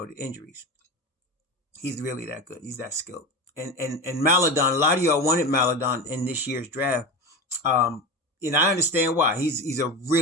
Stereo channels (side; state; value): both; normal; correlation 0.25